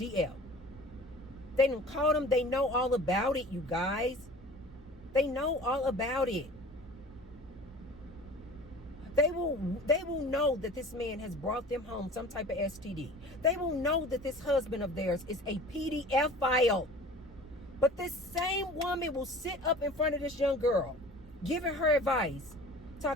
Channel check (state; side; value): normal; both; correlation 0.42